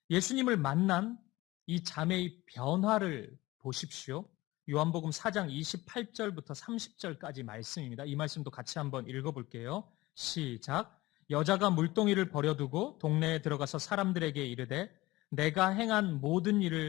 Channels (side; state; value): right; quieter; 19.2 dB